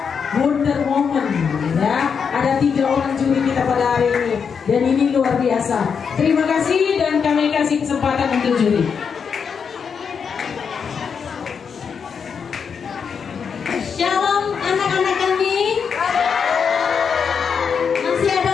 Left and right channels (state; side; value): quieter; right; 6.5 dB